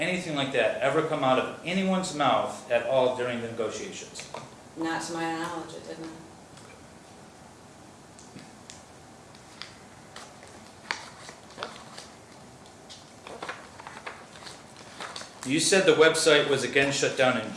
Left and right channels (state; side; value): identical; both; correlation 1.00